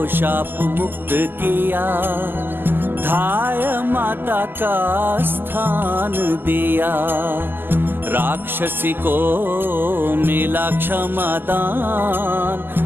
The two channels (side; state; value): left; late; 0.095 ms